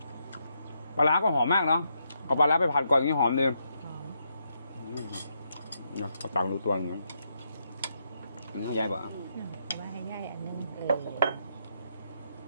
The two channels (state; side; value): inverted; both; correlation -0.79